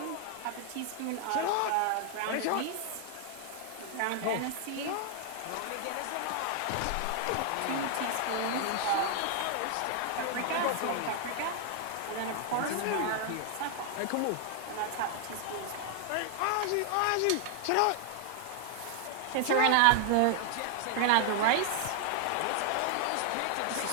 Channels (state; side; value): different; both; correlation 0.00